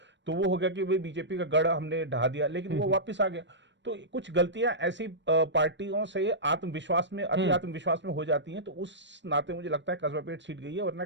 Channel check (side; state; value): left; late; 0.53 ms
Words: तो वो हो गया कि भाई बीजेपी का गढ़ हमने ढहा दिया, लेकिन वो वापस आ गया। तो कुछ गलतियां ऐसी पार्टियों से आत्मविश्वास में, अति आत्मविश्वास में हो जाती हैं, तो उस नाते मुझे लगता है कस्बा पेट सीट गई है। वरना